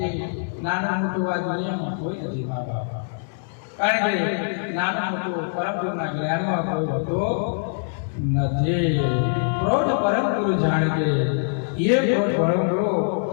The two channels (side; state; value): right; silent; 63 dB below the other